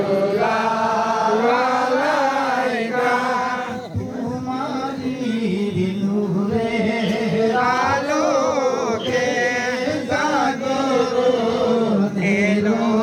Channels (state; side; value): identical; both; correlation 1.00